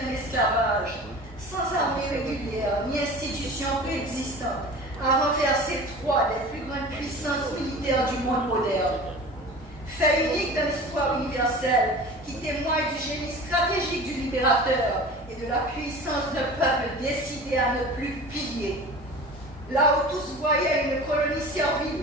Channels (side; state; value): both; normal; correlation 0.38